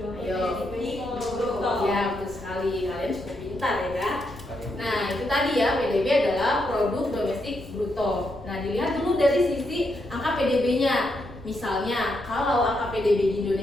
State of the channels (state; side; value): noise; left; rumble, 19 dB below the sound